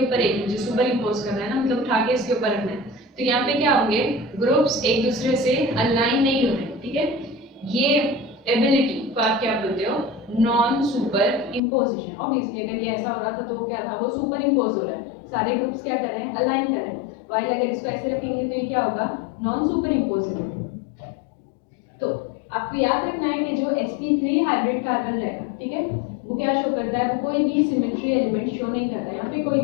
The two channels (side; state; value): right; drops out; at 11.6 s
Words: एक, मुझे सुपर इम्पोज करना है ना, मतलब उठा के इसके ऊपर रखना है, तो यहाँ पे क्या होंगे, ग्रुप्स एक दूसरे से अलाइन नहीं हो रहे, ठीक है। ये एबिलिटी को आप क्या बोलते हो, नॉन सुपर इम्पोजिशन। ऑब्वियसली अगर ये ऐसा हो रहा था तो क्या था, वो सुपर इम्पोज हो रहा है, सारे ग्रुप्स क्या कर रहे हैं, अलाइन कर रहे हैं। वाइल अगर इसको ऐसे रखेंगे तो ये क्या होगा, नॉन सुपर इम्पोजिशन। तो आपको याद रखना है कि जो sp3 हाइब्रिड कार्बन रहेगा, ठीक है, वो क्या शो करता है, वो कोई भी सिमेट्री एलिमेंट शो नहीं करता है। यहाँ पे कोई